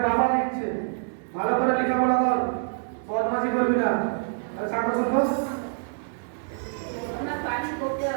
বাবা লিখছে। ভালো করে লেখাপড়া কর, বদমাশি করবি না। আর সাক্ষর করবো।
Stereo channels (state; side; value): silent; left; digital silence